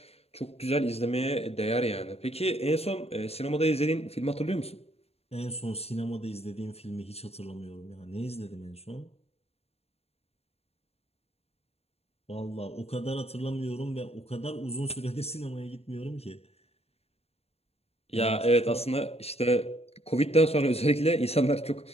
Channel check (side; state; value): right; late; 0.29 ms